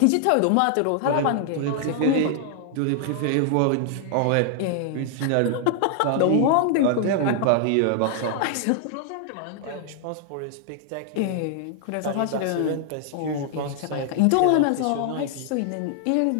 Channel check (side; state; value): both; different; correlation 0.00